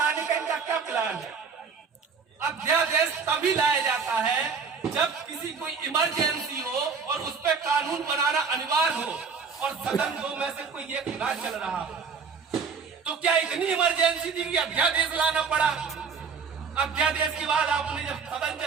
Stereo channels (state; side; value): quieter; left; 5.6 dB